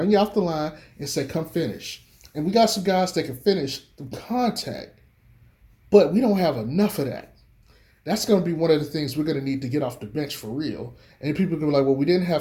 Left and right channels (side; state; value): both; identical; correlation 1.00